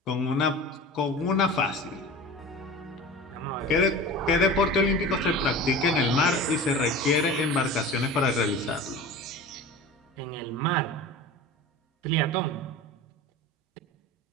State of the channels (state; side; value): normal; both; correlation 0.34